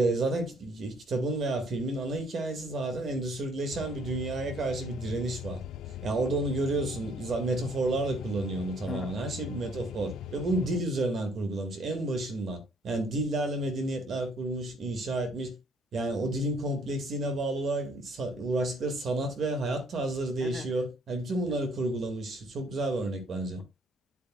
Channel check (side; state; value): both; normal; correlation 0.63